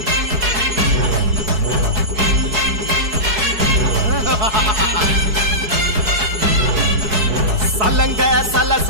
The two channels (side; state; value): left; late; 4.7 ms